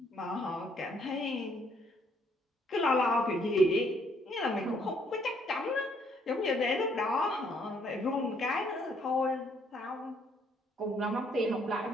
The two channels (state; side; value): normal; both; correlation 0.67